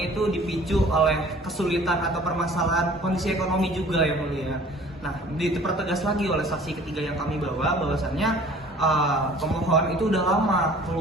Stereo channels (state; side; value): normal; both; correlation 0.50